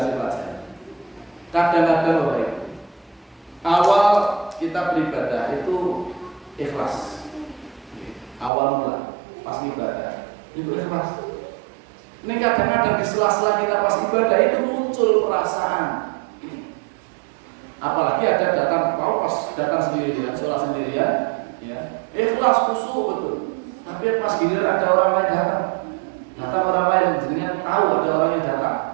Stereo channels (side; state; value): left; drops out; at 8.5 s